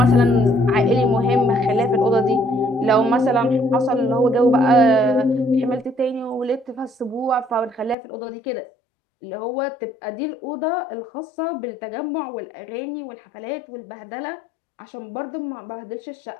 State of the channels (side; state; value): right; drops out; at 8.0 s